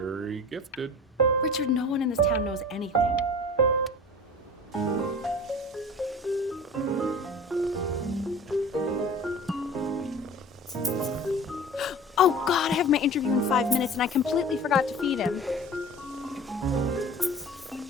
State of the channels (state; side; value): normal; both; correlation 0.39